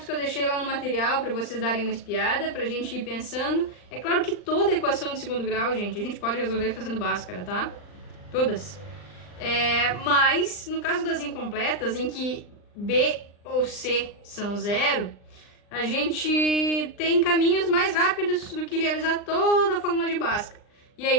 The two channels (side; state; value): right; late; 39 ms